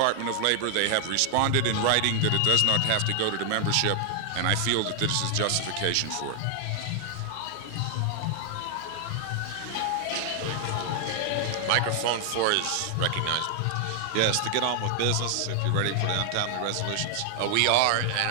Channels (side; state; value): both; different; correlation 0.00